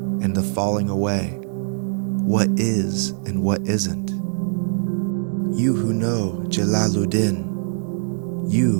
the falling away, what is and what isn't. You who know Jalaluddin,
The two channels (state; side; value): silent; left; 64 dB below the other